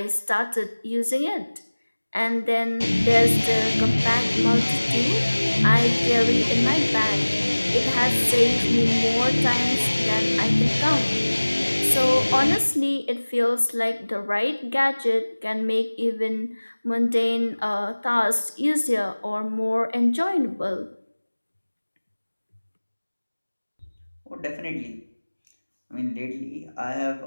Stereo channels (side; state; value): both; inverted; correlation -1.00